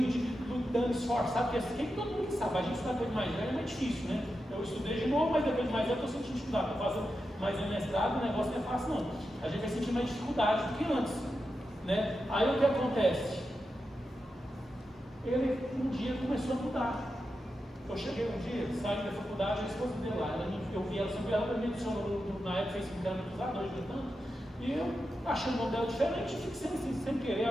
lutando, esforçado, porque quem todo mundo sabe, a gente estudar depois de mais velho é mais difícil, né? Eu estudei de novo, mas depois de mais velho eu estou sentindo dificuldade, estou fazendo mais um mestrado, o negócio não é fácil não, a gente vai sentir mais dificuldade do que antes, né? Aí o que acontece? Ele um dia começou a mudar. Eu cheguei um dia, saí da faculdade, a esposa dele lá, eu vi ela, ela me adicionou na época, fez 5 anos dos dois, tanto, e eu achei o nome dela diferente, fiquei sem querer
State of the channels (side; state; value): both; normal; correlation 0.89